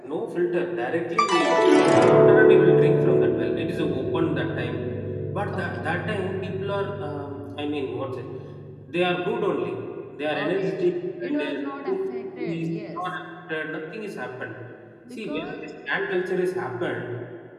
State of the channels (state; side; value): identical; both; correlation 1.00